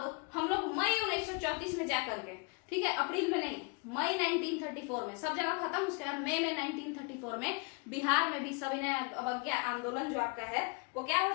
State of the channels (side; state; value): right; quieter; 32.2 dB